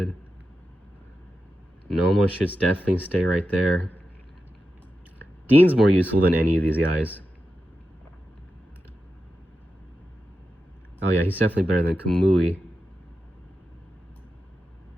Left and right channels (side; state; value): both; normal; correlation 0.90